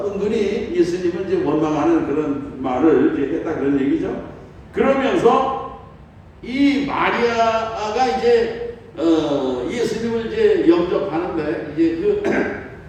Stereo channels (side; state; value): both; identical; correlation 1.00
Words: 은근히 예수님을 이제 원망하는 그런 말을 이제 했다 그런 얘기죠. 그러면서 이 마리아가 이제 예수님을 이제 영접하는데 이제